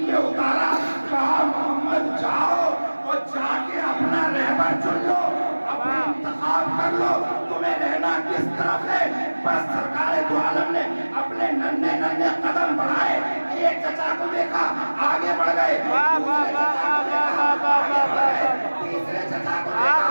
पे उतारा, कहा मोहम्मद जाओ और जाके अपना रहबर चुन लो, अपना इंतखाब कर लो, तुम्हें रहना किस तरफ है। बस सरकार दो आलम ने अपने नन्हे नन्हे कदम बढ़ाए, एक चचा को देखा आगे बढ़ गए, तीसरे चचा को देखा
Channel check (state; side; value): inverted; both; correlation -1.00